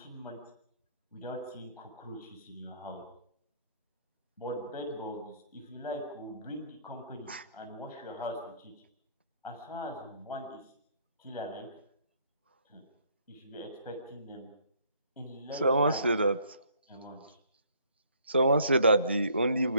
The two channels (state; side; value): inverted; both; correlation -0.64